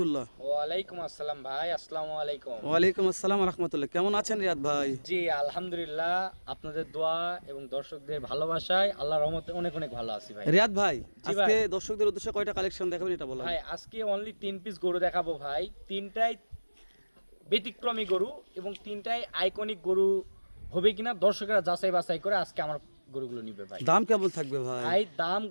ওয়ালাইকুম আসসালাম ভাই, আসসালামু আলাইকুম। ওয়ালাইকুম আসসালাম রহমতুল্লাহ। কেমন আছেন রিয়াদ ভাই? জি আলহামদুলিল্লাহ, আপনাদের দোয়া এবং দর্শকদের ভালোবাসায় আল্লাহর রহমতে অনেক অনেক ভালো আছি ভাই। রিয়াদ ভাই, জি আজকে ভাই। দর্শকদের উদ্দেশ্যে কয়টা কালেকশন দেখাবেন এটা বলেন। ভাই আজকে অনলি 3 পিস গরু দেখাবো ভাই, তিনটাই ব্যতিক্রমী গরু এবং তিনটাই আইকনিক গরু হবে কিনা দর্শকরা যাচাই বাছাই করে আজকে আমার গরুগুলো নিবে ভাই। দাম কেমন থাকবে ভাই? ভাই দাম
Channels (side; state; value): both; inverted; correlation -1.00